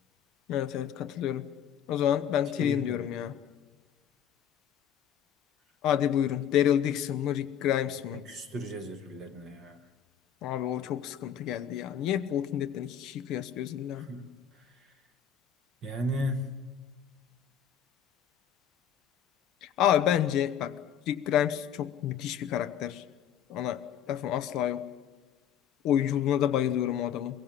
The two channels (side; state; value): right; quieter; 9.2 dB